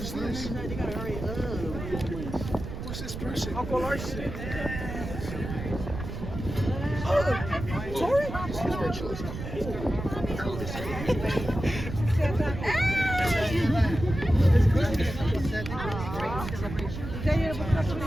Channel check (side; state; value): right; noise; rumble, 7 dB below the sound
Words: this? Who's this person? Uncle Larson. Oh, Tori? Jackson.